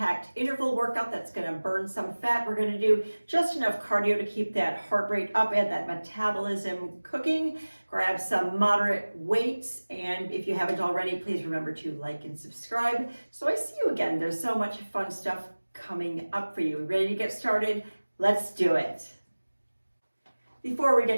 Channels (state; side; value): inverted; both; correlation -1.00